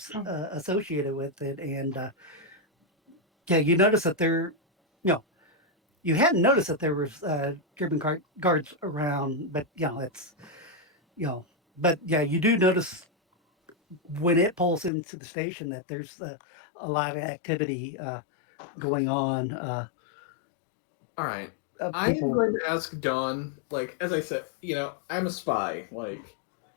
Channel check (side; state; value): right; drops out; at 14.9 s